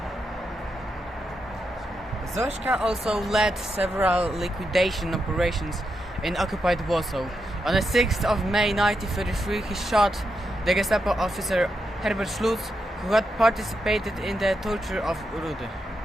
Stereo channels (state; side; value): normal; both; correlation 0.84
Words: Zośka also led several liquidation operations in occupied Warsaw. On the 6th of May 1933, he shot the Gestapo officer Herbert Schlutz, who had participated in the torture of Rudy.